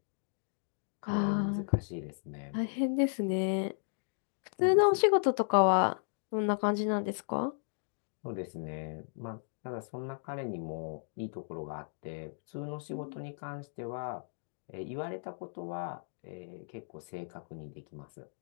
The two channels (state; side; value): silent; right; digital silence